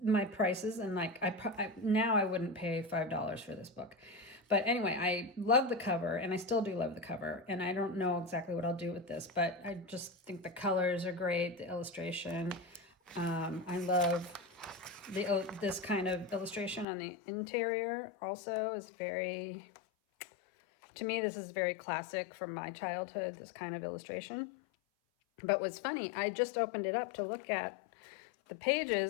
my prices, and like now I wouldn't pay $5 for this book. But anyway, I love the cover, and I still do love the cover, and I don't know exactly what I'll do with this, but I just think the colors are great, the illustration. I love this kind of illustration on the interior also is very To me, this is very classic from my childhood, this kind of illustration. But what's funny, I just opened it up to look at the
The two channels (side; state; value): right; drops out; at 16.9 s